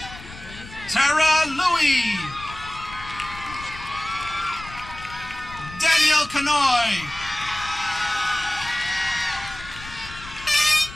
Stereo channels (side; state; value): left; noise; rumble, 16 dB below the sound